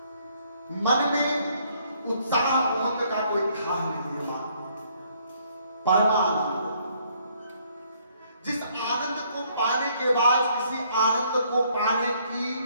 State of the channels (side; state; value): both; inverted; correlation -0.66